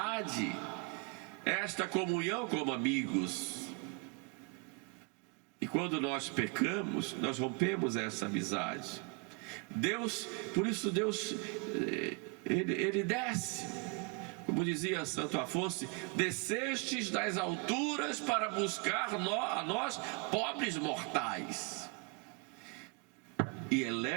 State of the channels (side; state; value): left; quieter; 32.5 dB